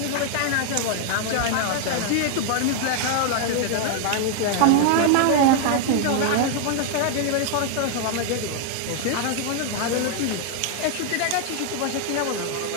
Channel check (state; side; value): different; both; correlation 0.00